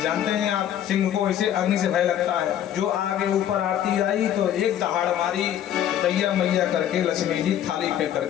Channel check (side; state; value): right; quieter; 10.7 dB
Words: जानते हैं आप, सिंह को इसे अग्नि से भय लगता है। जो आगे ऊपर आरती आई तो एक दहाड़ मारी, दैया मैया करके लक्ष्मी जी थाली पे